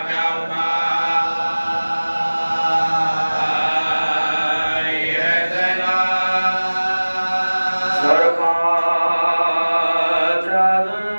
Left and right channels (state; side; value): inverted; both; correlation -1.00